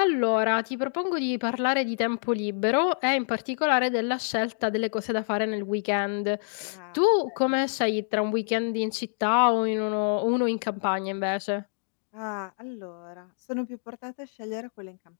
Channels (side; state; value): right; silent; digital silence